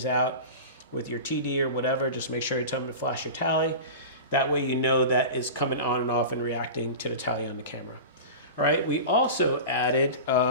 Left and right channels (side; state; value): both; inverted; correlation -0.31